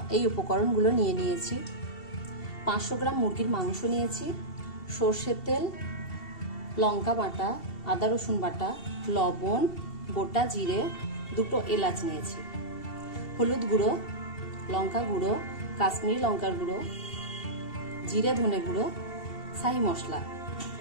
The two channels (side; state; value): right; late; 2.7 ms